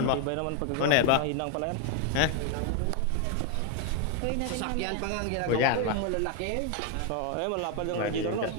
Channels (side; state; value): both; different; correlation 0.01